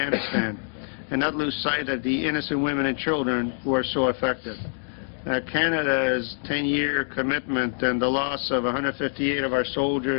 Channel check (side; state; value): right; silent; digital silence